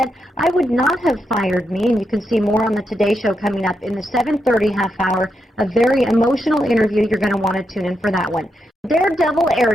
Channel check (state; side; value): normal; both; correlation 0.84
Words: "I would not have fired me," and you can see more on the Today Show coming up in the 7:30 half hour. A very emotional interview. You're going to want to tune in for that one. Daredevil